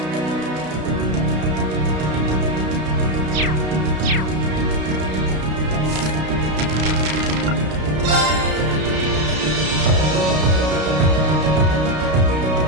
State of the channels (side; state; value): left; late; 32 ms